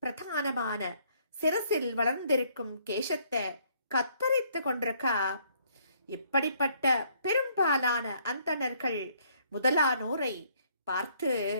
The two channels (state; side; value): inverted; both; correlation -0.65